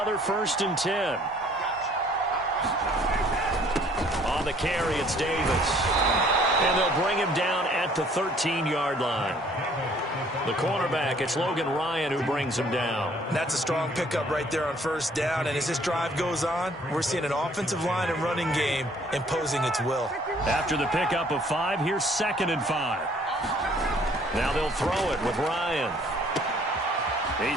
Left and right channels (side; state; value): both; normal; correlation 0.59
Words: 1st and 10. On the carry, it's Davis. And they'll bring him down at the 13-yard line. The cornerback, it's Logan Ryan who brings him down. That's a strong pickup right there on 1st down. And as this drive goes on, we're seeing an offensive line and running game imposing its will. After the pickup of 5, here's 2nd and 5. Now they'll throw it with Ryan.